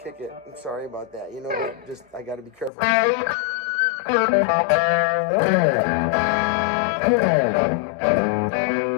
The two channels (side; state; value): right; drops out; at 2.7 s